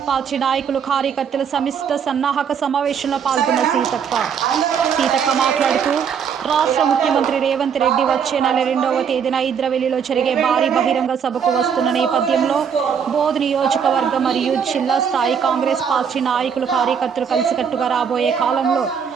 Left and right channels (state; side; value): quieter; left; 7.2 dB